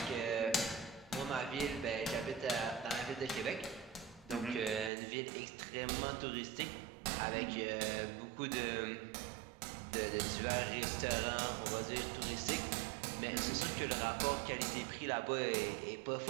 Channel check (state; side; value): drops out; left; at 4.9 s